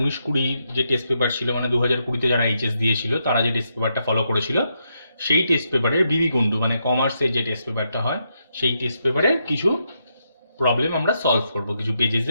যে টেস্ট পেপার ছিল, মানে 2020-তে যারা এইচএস দিয়েছিল তারা যে টেস্ট পেপারটা ফলো করেছিল সেই টেস্ট পেপারের বিবি কুন্ডু মানে কমার্সের যে টেস্ট পেপারটা হয় সেই টেস্ট পেপারের কিছু প্রবলেম আমরা সলভ করব, কিছু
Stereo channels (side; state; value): both; inverted; correlation -0.81